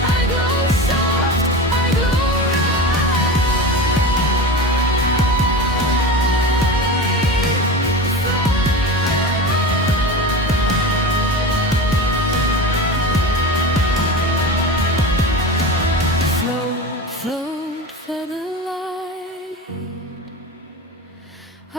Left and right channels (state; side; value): normal; both; correlation 0.28